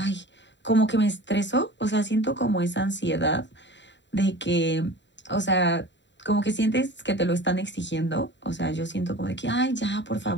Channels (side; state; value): right; late; 0.52 ms